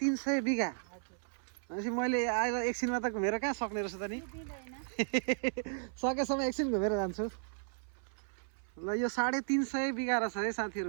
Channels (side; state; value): left; silent; 55 dB below the other